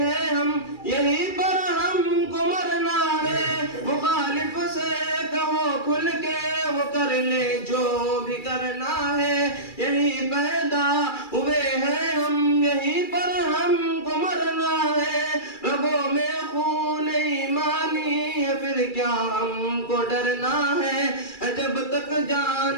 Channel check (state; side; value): late; right; 2.3 ms